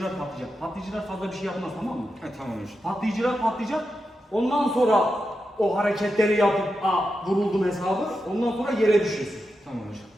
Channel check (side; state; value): both; normal; correlation 0.88